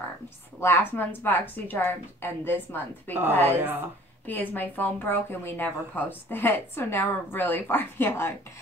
Last month's Boxy charms and this month because my phone broke and we never posted it. So now we're really far behind.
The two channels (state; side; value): normal; both; correlation 0.51